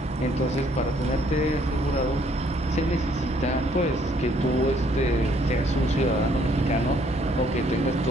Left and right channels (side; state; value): both; normal; correlation 0.65